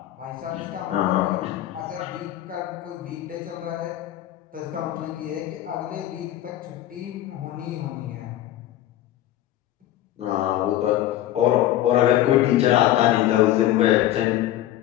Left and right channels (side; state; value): right; quieter; 13.5 dB